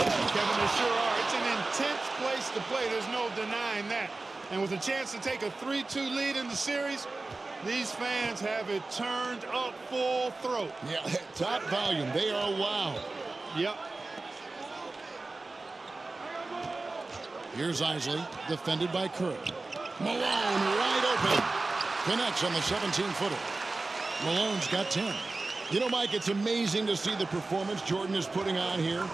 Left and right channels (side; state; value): left; quieter; 3.4 dB